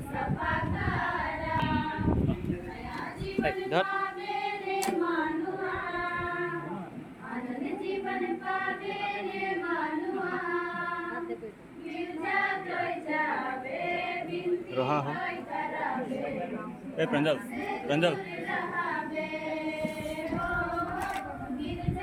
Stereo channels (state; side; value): identical; both; correlation 1.00